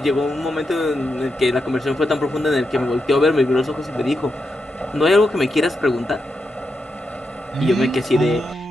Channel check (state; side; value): normal; both; correlation 0.85